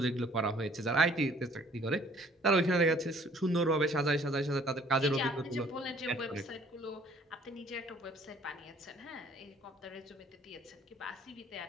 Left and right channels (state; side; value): normal; both; correlation 0.58